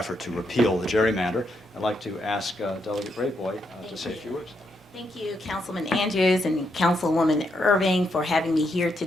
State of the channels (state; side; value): normal; both; correlation 0.79